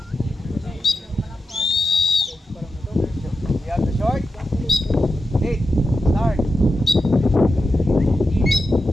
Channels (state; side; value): normal; both; correlation 0.89